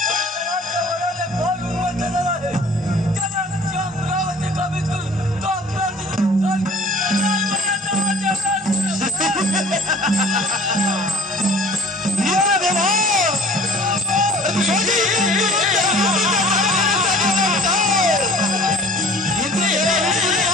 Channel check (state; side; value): normal; both; correlation 0.48